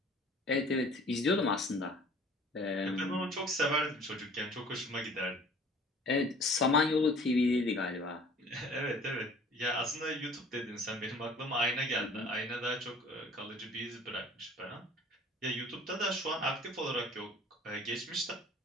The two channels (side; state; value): both; normal; correlation 0.50